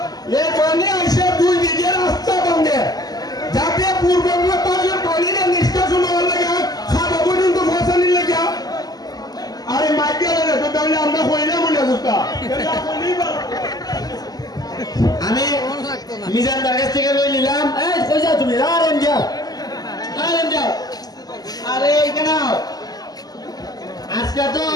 এখানে এসে 2 বিঘে রাস্তা ভাঙে যাতে পূর্ববঙ্গের পানির নিষ্কাশন হওয়ার লাগে খাওয়া পর্যন্ত ফসানির লাগে আরে মাইকে তো তাহলে আমরা কইলে মনে বুঝতা আমি মিজান বাগের থেকে লই নিলাম এই কই যাও তুমি আরেন যাও আরে এখানে আজকে তো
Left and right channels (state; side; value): late; right; 0.19 ms